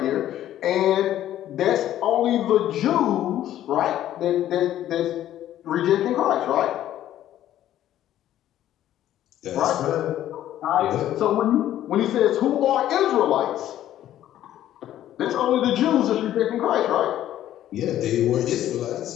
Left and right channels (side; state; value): right; quieter; 12.4 dB